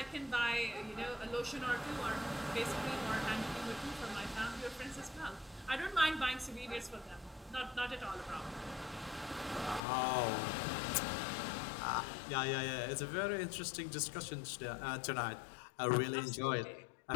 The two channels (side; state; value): right; drops out; at 9.8 s